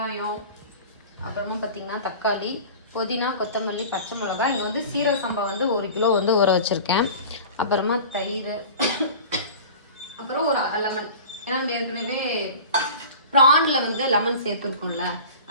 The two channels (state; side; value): inverted; both; correlation -0.38